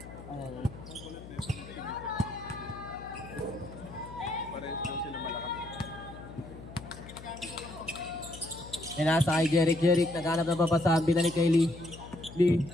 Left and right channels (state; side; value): noise; left; hum, 15 dB below the sound